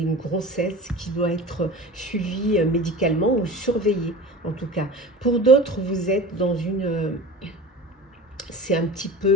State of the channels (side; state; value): both; normal; correlation 0.35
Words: grossesse qui doit être suivie médicalement ou surveillée, en tout cas. Pour d'autres, vous êtes dans une... c'est un petit